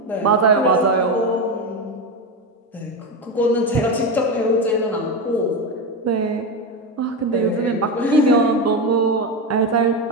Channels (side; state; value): both; normal; correlation 0.15